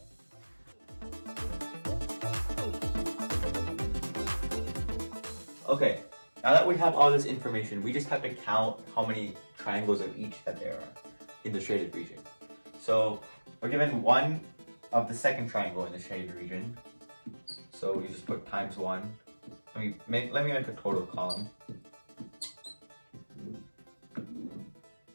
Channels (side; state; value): both; inverted; correlation -1.00